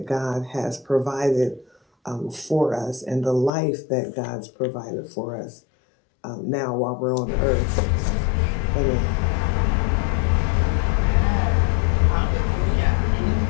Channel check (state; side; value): drops out; right; at 3.5 s